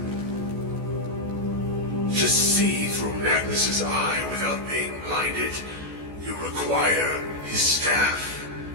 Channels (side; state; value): left; late; 14 ms